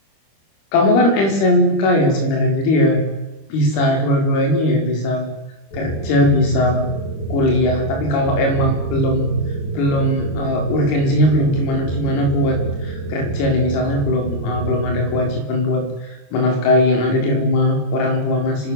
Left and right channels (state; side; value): late; right; 25 ms